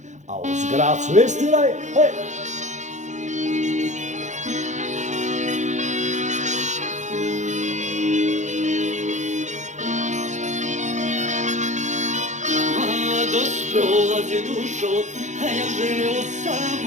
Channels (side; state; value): left; late; 0.35 ms